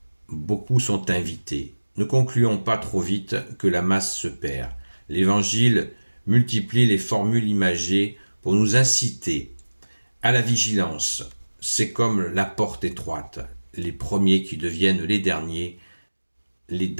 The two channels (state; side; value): inverted; both; correlation -1.00